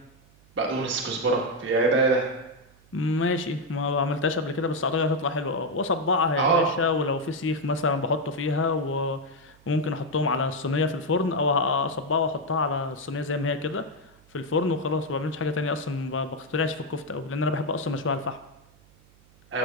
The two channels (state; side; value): noise; right; hum, 29 dB below the sound